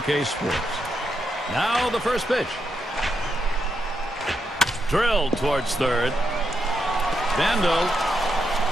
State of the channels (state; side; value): normal; both; correlation 0.83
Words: Sports. Now the first pitch. Drilled towards third. Bando.